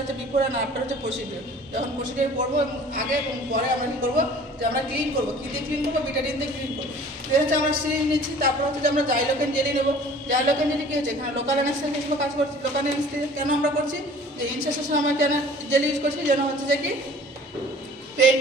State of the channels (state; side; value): normal; both; correlation 0.48